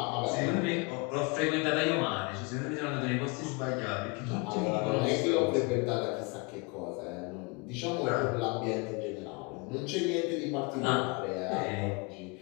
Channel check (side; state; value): right; quieter; 29.2 dB